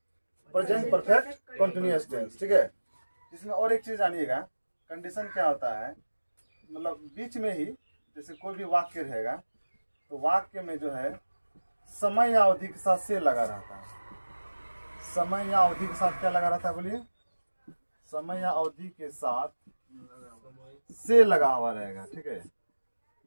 प्रेजेंट परफेक्ट कंटिन्यूअस टेंस। ठीक है। इसमें और एक चीज जानिएगा, कंडीशन क्या होता है, मतलब बीच में ही जैसे कोई भी वाक्य रहेगा, तो वाक्य में जो है समय या अवधि के साथ से लगा रहता है। समय या अवधि के साथ क्या लगा रहता है, बोलिए, समय या अवधि के साथ से लगा हुआ रहेगा। ठीक है,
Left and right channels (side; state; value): both; inverted; correlation -1.00